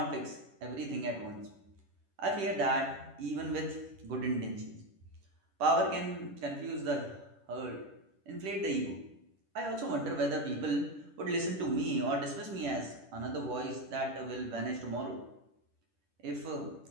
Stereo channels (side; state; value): left; late; 10 ms